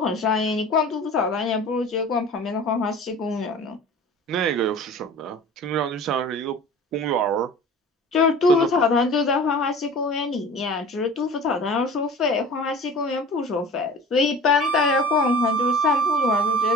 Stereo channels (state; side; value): normal; both; correlation 0.41